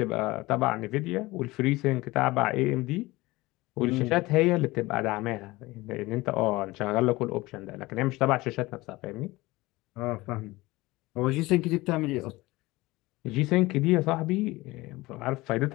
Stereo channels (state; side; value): quieter; right; 20.4 dB